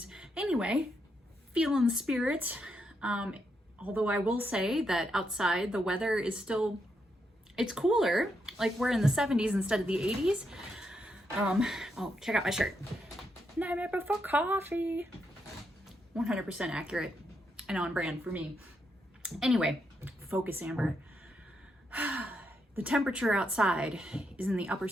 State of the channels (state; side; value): normal; both; correlation 0.80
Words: Anyway, feeling the spirit. Although I will say that outside the weather is still, it's cooler. Like we're in the 70s instead of the 80s. Oh, check out my shirt. Nightmare Before Coffee. 100% accurate and on brand for me. Anyway, focus, Amber. The temperature outside is in the upper